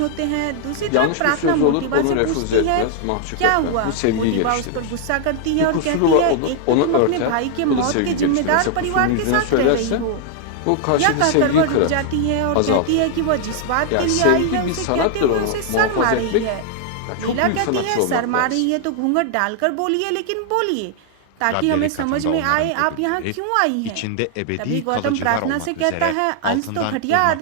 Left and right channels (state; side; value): different; both; correlation 0.00